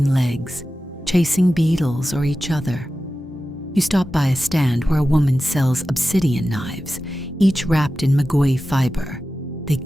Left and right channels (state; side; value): normal; both; correlation 0.94